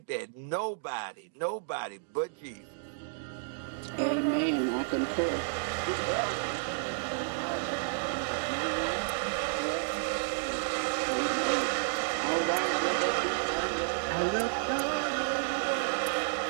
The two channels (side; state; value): left; silent; digital silence